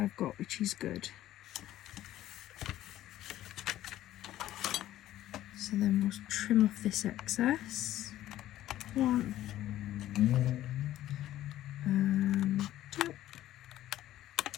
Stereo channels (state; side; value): quieter; right; 13.7 dB